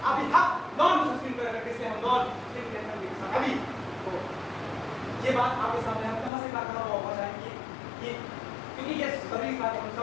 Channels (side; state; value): right; drops out; at 6.3 s